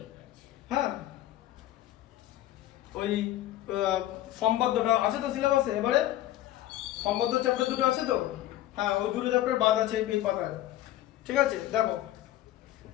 হ্যাঁ ওই সম্পাদ্যটা আছে তো সিলেবাসে, এবারে সম্পাদ্য চ্যাপ্টার দুটো আছে তো, হ্যাঁ ওই দুটো চ্যাপ্টার বাদ আছে এই পাতায়, ঠিক আছে। দেখো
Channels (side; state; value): right; quieter; 14.1 dB